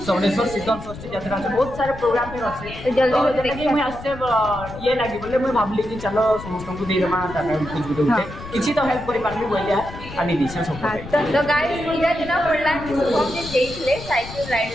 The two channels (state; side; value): noise; left; rumble, 13 dB below the sound